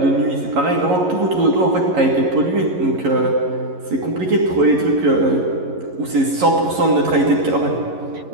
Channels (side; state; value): left; late; 11 ms